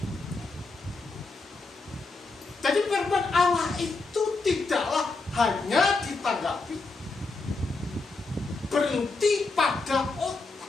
Jadi firman Allah itu tidaklah hanya ditanggapi berhenti pada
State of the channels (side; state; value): right; quieter; 3.7 dB